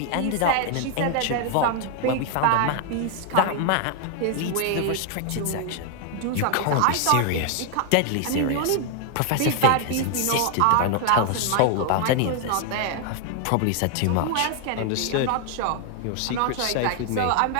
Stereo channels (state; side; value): different; both; correlation 0.00